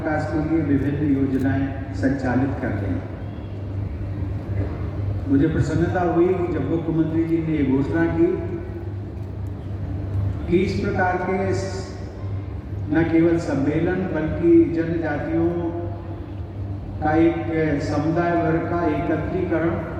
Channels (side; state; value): both; identical; correlation 1.00